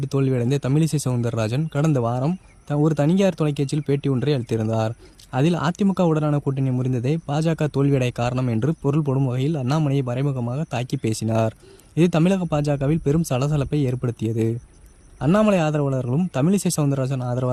தோல்வியடைந்த தமிழிசை சவுந்தரராஜன் கடந்த வாரம் ஒரு தனியார் தொலைக்காட்சியில் பேட்டி ஒன்றை அளித்திருந்தார். அதில் அதிமுகவுடனான கூட்டணி முறிந்ததே பாஜக தோல்வியடைய காரணம் என்று பொருள் போடும் வகையில் அண்ணாமலையை மறைமுகமாக தாக்கி பேசினார். இது தமிழக பாஜகவில் பெரும் சலசலப்பை ஏற்படுத்தியது. அண்ணாமலை ஆதரவாளர்களும் தமிழிசை சவுந்தரராஜன்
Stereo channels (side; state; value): both; identical; correlation 1.00